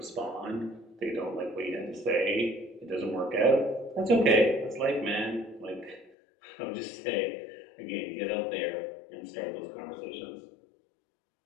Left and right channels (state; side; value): drops out; right; at 6.1 s